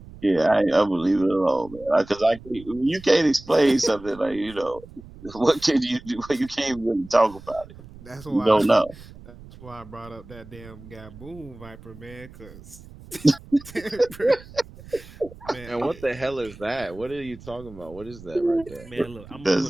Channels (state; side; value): noise; right; rumble, 19 dB below the sound